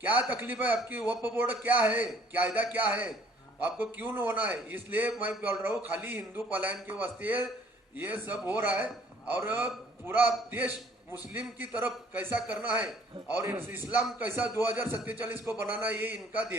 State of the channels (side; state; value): both; normal; correlation 0.59